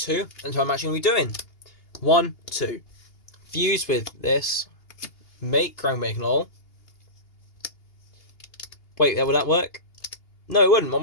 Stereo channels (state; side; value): late; right; 2.8 ms